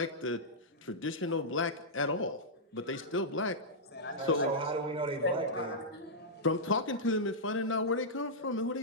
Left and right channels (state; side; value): normal; both; correlation -0.11